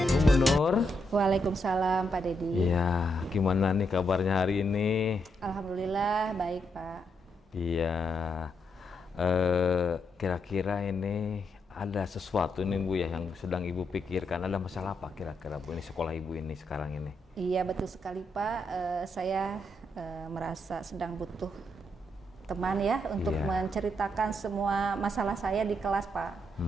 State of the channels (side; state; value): both; normal; correlation 0.80